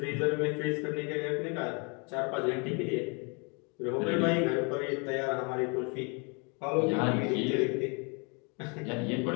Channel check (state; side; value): quieter; right; 33.6 dB